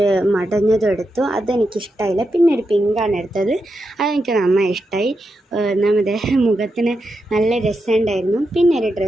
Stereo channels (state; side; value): normal; both; correlation 0.86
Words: മടഞ്ഞതും എടുത്തു. അതെനിക്കിഷ്ടമായില്ല. പിന്നെ ഒരു പിങ്കാണ് എടുത്തത്. അതെനിക്ക് നന്നായി ഇഷ്ടമായി. നമ്മുടെ മുഖത്തിന് നല്ല രസമുണ്ടായിരുന്നു. പിന്നെ ഒരു